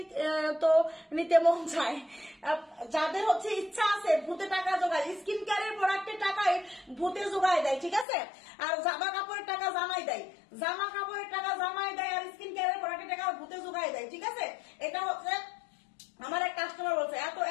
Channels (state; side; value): drops out; right; at 8.1 s